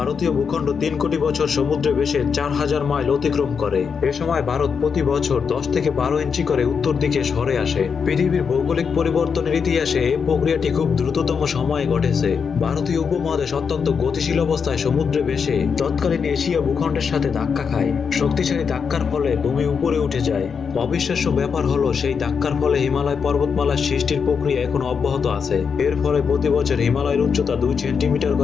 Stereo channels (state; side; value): quieter; right; 6.2 dB